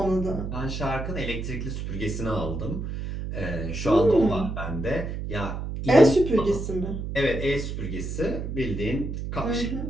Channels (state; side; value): noise; right; hum, 5 dB below the sound